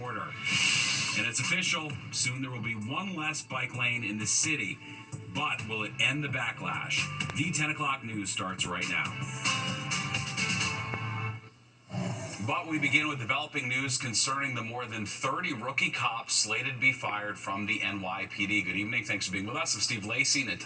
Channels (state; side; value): identical; both; correlation 1.00